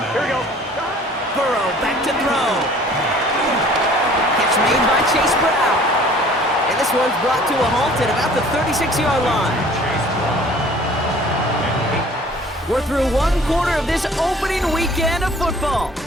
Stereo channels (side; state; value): both; normal; correlation 0.51